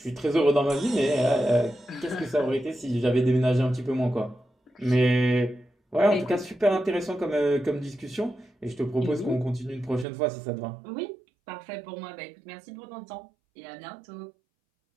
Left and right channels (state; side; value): drops out; left; at 10.1 s